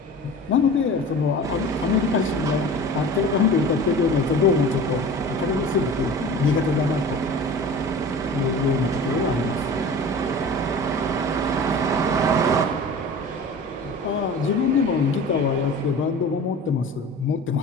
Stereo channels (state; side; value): normal; both; correlation 0.38